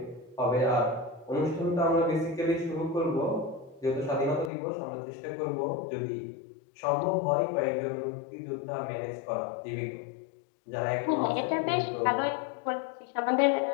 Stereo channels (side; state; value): right; drops out; at 4.5 s